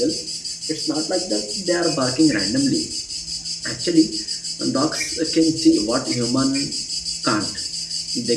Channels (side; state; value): both; identical; correlation 1.00